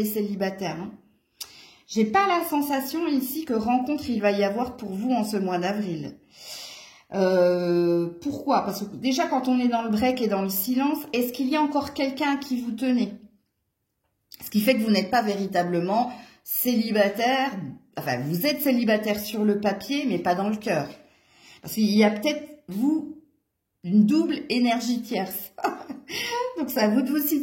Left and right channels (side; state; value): both; identical; correlation 1.00